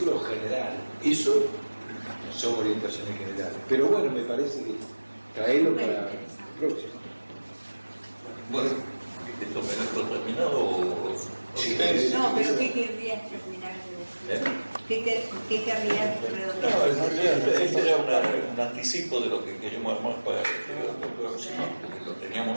general. Eso son orientaciones generales. Pero bueno, me parece que traerlo para el próximo. Bueno, ¿Esto me dejo terminado o...? Sí, no, pero ¿qué querrías terminar de decir? ¿Qué querrías redondear? No, en realidad este era un anticipo de lo que queríamos armar para el próximo, porque lo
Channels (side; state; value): both; inverted; correlation -1.00